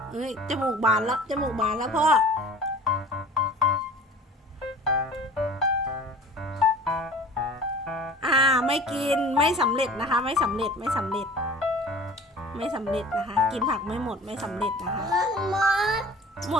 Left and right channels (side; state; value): both; normal; correlation 0.43